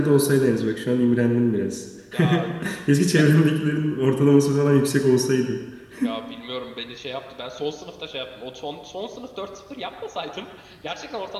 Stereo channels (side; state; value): both; identical; correlation 1.00